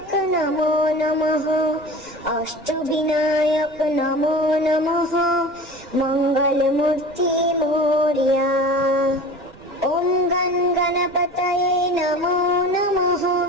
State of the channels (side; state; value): right; noise; rumble, 25 dB below the sound